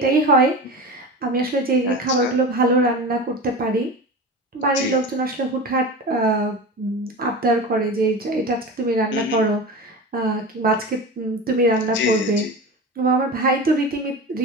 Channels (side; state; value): both; normal; correlation 0.29